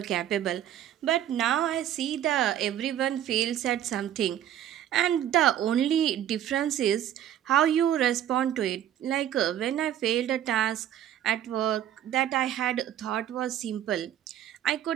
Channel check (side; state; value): left; quieter; 11.1 dB